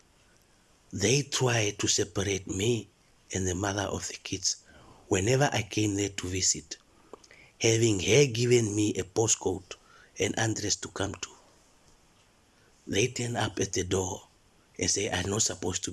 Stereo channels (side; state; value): both; identical; correlation 1.00